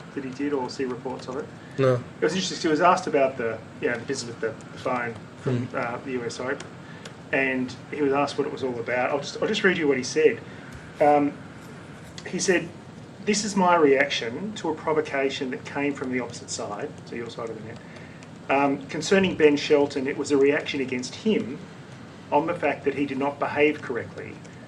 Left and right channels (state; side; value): identical; both; correlation 1.00